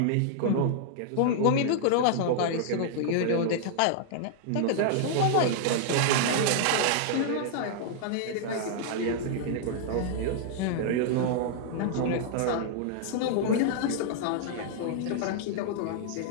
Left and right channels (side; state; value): both; different; correlation -0.01